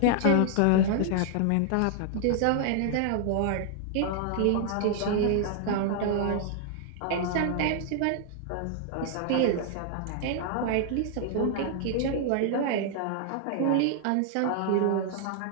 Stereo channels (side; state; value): both; different; correlation -0.01